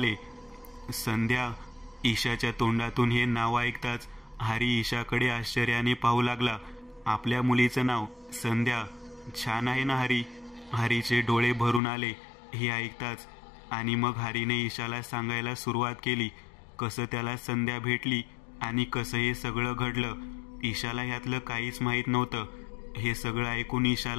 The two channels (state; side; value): drops out; right; at 11.8 s